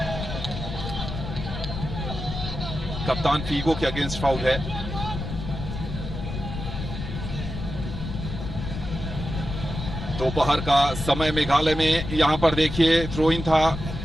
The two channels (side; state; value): left; noise; rumble, 6 dB below the sound